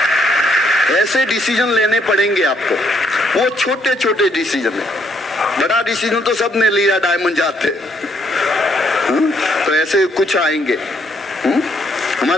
ऐसे डिसीजन लेने पड़ेंगे आपको। वो छोटे छोटे डिसीजन है, बड़ा डिसीजन तो सबने लिया, डायमंड जाते। तो ऐसे कुछ आएंगे।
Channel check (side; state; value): both; normal; correlation 0.71